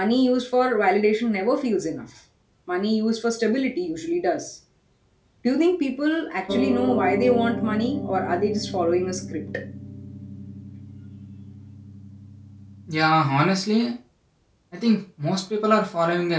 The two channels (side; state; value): both; identical; correlation 1.00